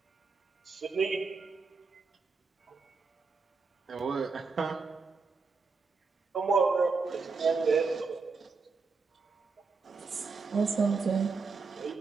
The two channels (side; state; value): left; quieter; 4.6 dB